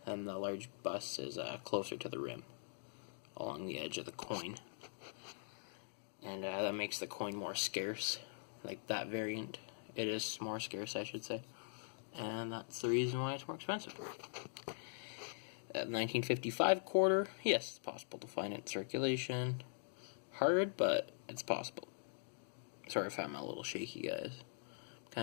and the large bust is closer to the rim, along the edge of the coin. And that makes the coin more scarce, like that variant. It is more scarce, I should say. And that's the reason why it's more expensive. 1955 quarter, yes, it's possible to find it in circulation. hard, but it's possible. Sorry if I'm a little shaky, guys. I'm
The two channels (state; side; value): silent; right; digital silence